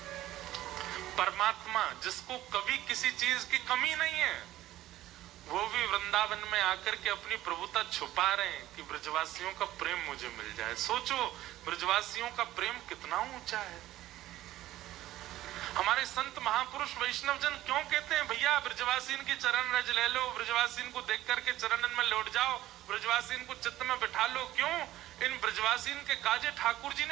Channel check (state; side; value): quieter; left; 14.8 dB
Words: परमात्मा जिसको कभी किसी चीज की कमी नहीं है, वो भी वृंदावन में आकर के अपनी प्रभुता छुपा रहे हैं कि ब्रजवासियों का प्रेम मुझे मिल जाए। सोचो ब्रजवासियों का प्रेम कितना ऊंचा है। हमारे संत महापुरुष वैष्णव जन क्यों कहते हैं भैया ब्रजवासीन की चरण रज ले लो, ब्रजवासीन को देख करके चरणन में लौट जाओ, ब्रजवासीन को चित्त में बिठा लो। क्यों? इन ब्रजवासीन के काजे ठाकुर जी